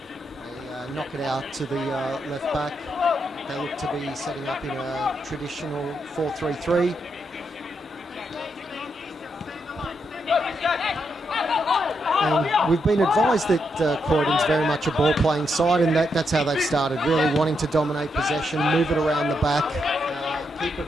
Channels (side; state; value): both; normal; correlation 0.81